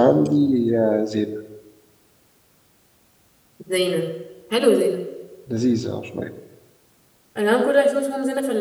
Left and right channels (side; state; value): both; identical; correlation 1.00